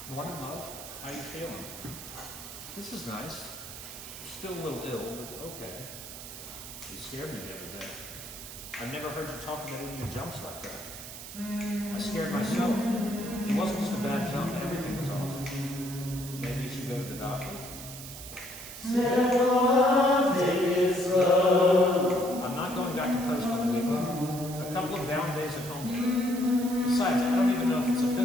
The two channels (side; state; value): right; noise; hiss, 12 dB below the sound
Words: Morning, love. How you feeling? This is nice. Still a little ill, but okay. You scared me the other day. I've never heard you talk about any of your jumps like that. I scared myself. It wasn't just a bad jump, everything was off. Maybe you should go to the doctor. I'm not going back to post on the weekend. A couple of down days at home. Besides, I don't even know if it's a